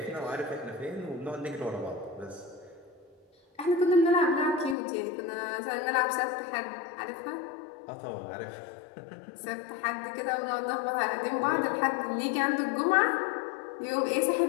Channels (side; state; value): right; drops out; at 4.8 s